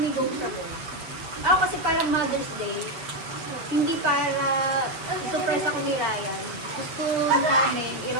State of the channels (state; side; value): late; left; 7.0 ms